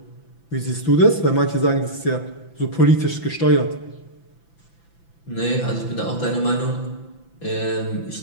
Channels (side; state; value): right; late; 5.9 ms